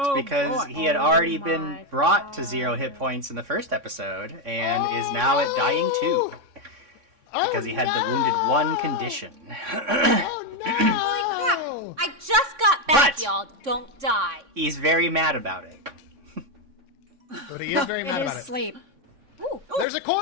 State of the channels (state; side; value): late; left; 3.6 ms